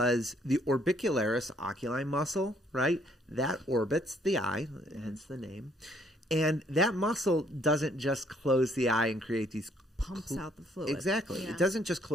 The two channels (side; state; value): both; normal; correlation 0.66